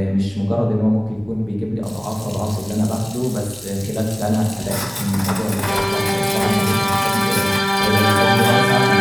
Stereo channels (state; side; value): noise; right; hum, 26 dB below the sound